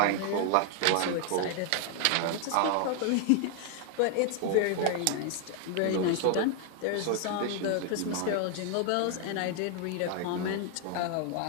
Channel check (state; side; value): different; both; correlation 0.00